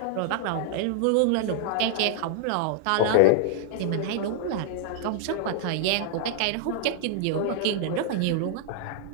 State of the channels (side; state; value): both; different; correlation -0.01